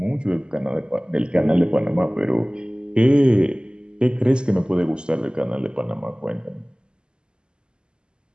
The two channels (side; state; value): left; late; 0.049 ms